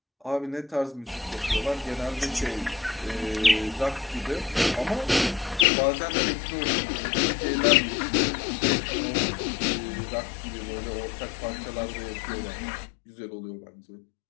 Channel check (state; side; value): drops out; right; at 5.7 s